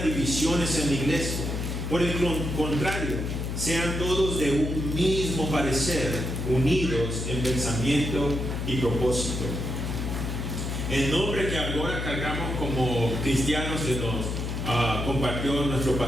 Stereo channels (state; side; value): noise; left; hum, 3 dB below the sound